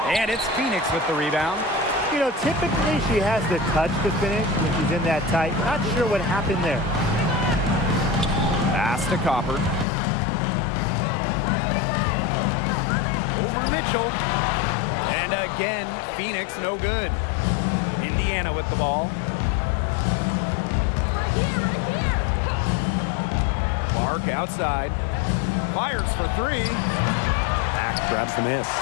And it's Phoenix with the rebound. You know, typically she has the touch to finish when she's in that tight. Not sure what happened there. Pass to Copper. Over Mitchell. And again, Phoenix no good. Indiana with the ball. Clark outside. Fires for three. Mack grabs the miss.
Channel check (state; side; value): drops out; right; at 9.9 s